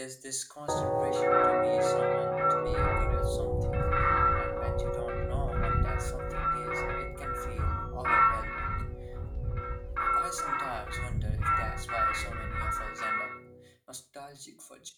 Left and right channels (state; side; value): identical; both; correlation 1.00